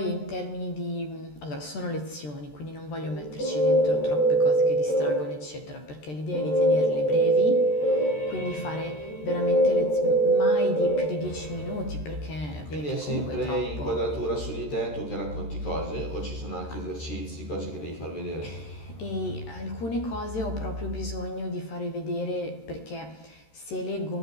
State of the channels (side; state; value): right; late; 13 ms